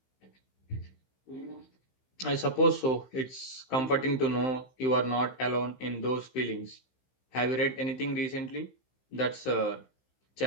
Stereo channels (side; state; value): right; late; 15 ms